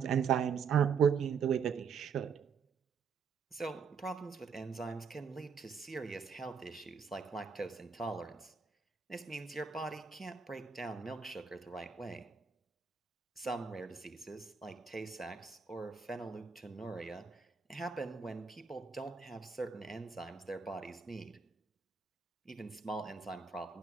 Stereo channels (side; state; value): left; quieter; 6.1 dB